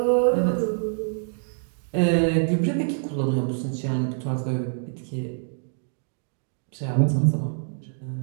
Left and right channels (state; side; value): silent; left; digital silence